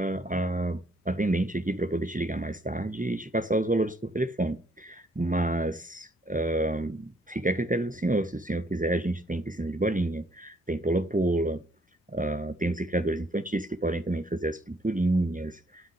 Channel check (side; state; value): both; normal; correlation 0.66